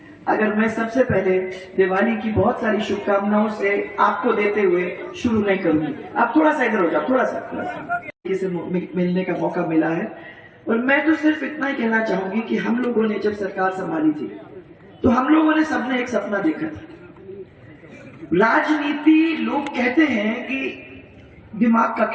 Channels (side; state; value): both; identical; correlation 1.00